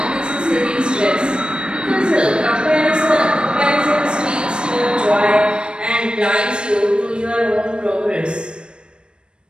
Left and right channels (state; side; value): late; left; 0.054 ms